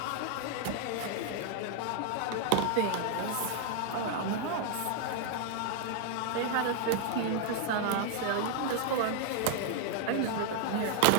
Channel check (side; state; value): both; different; correlation 0.00